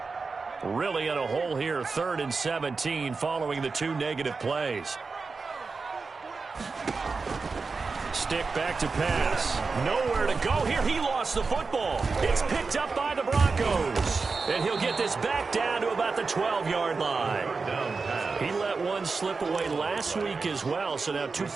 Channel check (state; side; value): quieter; left; 4.4 dB